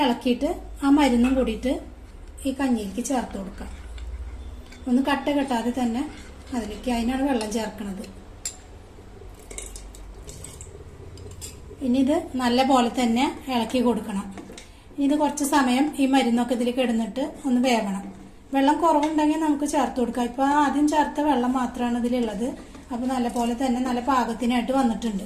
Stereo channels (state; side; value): identical; both; correlation 1.00